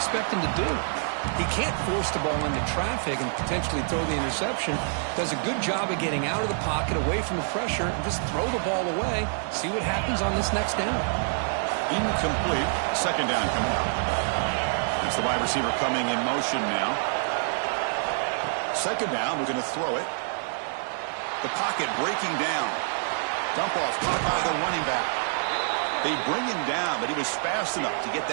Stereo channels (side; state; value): left; silent; digital silence